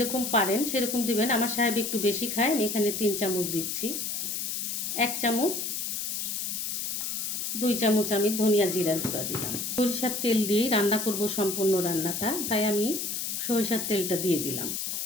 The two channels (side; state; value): left; noise; hiss, 3 dB below the sound